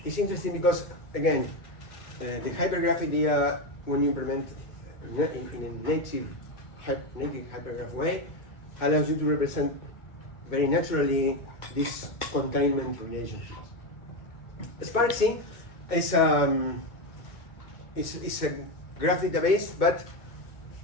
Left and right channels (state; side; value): late; right; 2.3 ms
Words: because again, the hypergraph idea, when you implement in a native hypergraph way, allows you to represent very naturally these containment relationships. Sparksy is a graph database, but